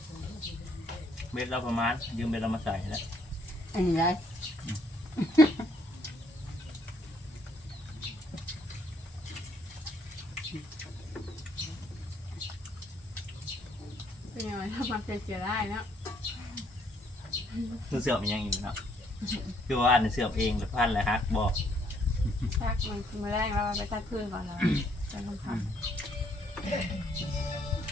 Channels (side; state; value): both; normal; correlation 0.68